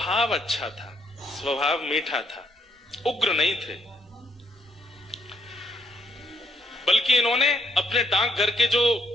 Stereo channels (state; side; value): normal; both; correlation 0.72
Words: अच्छा था, स्वभाव मीठा था, उग्र नहीं थे। बल्कि इन्होंने अपने डाकघर के जो